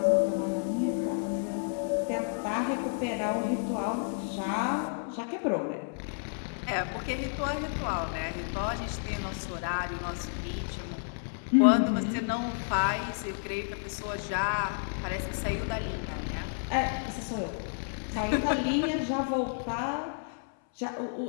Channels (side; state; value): right; silent; 57 dB below the other